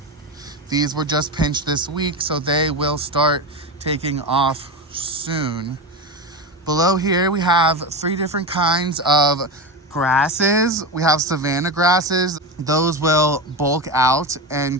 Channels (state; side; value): normal; both; correlation 0.20